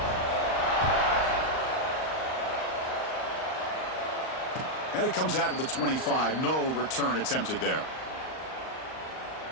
And it comes out of the 25. No return attempted there.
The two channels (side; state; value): right; late; 38 ms